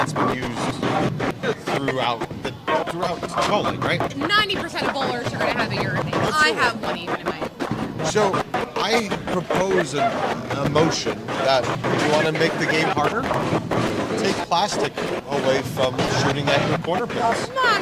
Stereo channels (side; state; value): both; identical; correlation 1.00